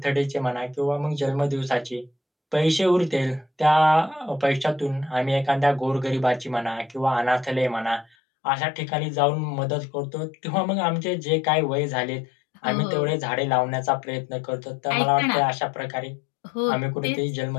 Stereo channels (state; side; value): drops out; right; at 8.1 s